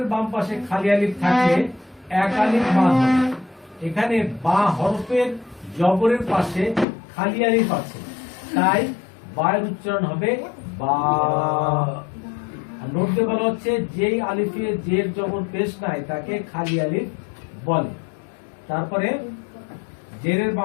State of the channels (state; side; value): drops out; right; at 6.9 s